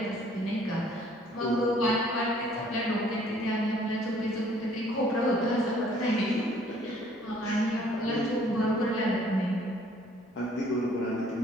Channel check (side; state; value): both; normal; correlation 0.59